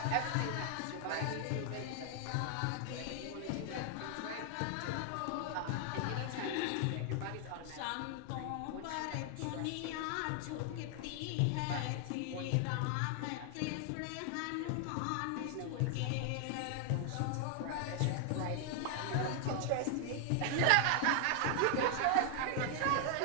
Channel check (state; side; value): different; both; correlation 0.00